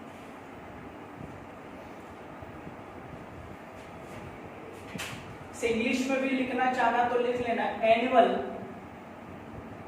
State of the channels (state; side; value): identical; both; correlation 1.00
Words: इंग्लिश में भी लिखना चाहना तो लिख लेना, एनुअल